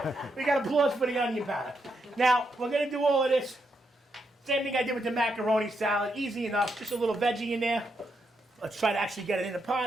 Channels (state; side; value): normal; both; correlation 0.81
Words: We got applause for the onion powder. Now, we're going to do all of this. Same thing I did with the macaroni salad. Easy enough. Just a little veggie in there. Let's try to actually get it in the